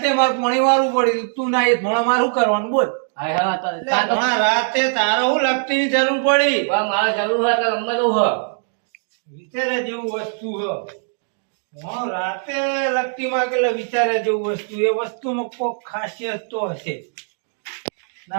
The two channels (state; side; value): silent; left; 65 dB below the other